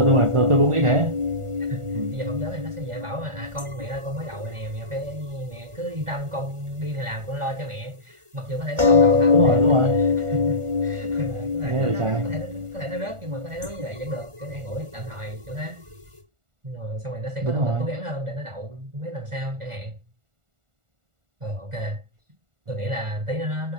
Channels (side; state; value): left; late; 1.4 ms